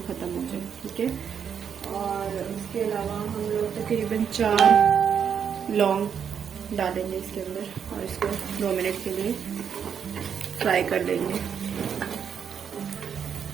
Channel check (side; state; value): left; quieter; 7.6 dB